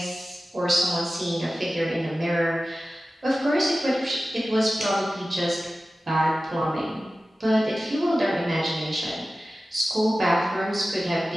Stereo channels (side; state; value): both; normal; correlation 0.95